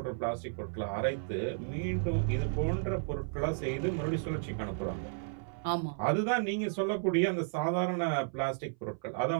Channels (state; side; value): silent; left; 56 dB below the other